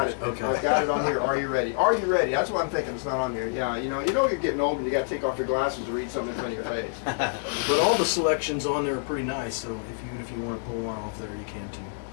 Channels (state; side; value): silent; right; digital silence